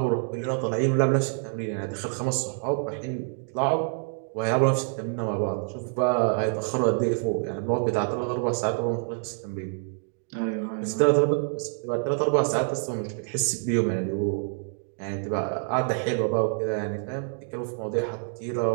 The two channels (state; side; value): silent; left; 60 dB below the other